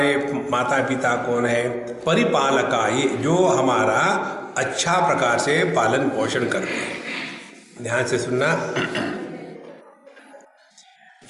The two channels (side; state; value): both; identical; correlation 1.00